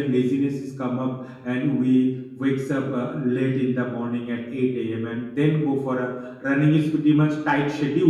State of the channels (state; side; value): identical; both; correlation 1.00